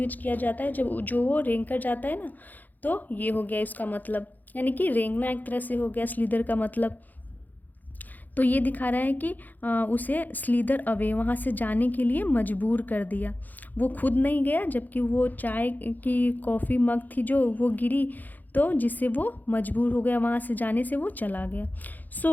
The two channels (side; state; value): right; late; 0.084 ms